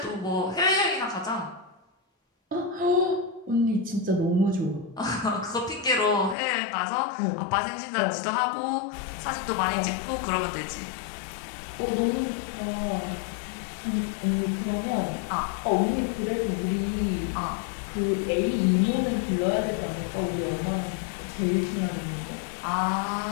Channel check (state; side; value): drops out; right; at 6.4 s